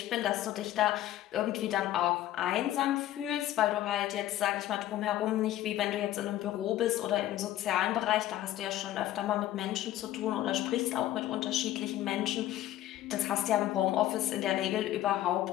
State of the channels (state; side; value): quieter; right; 13.7 dB